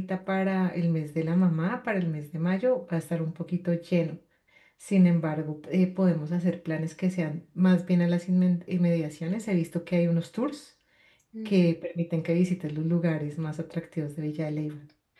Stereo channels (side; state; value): both; identical; correlation 1.00